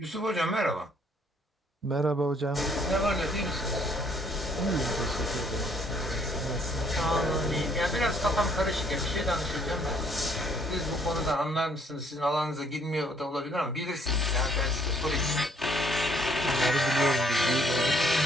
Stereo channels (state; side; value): normal; both; correlation 0.65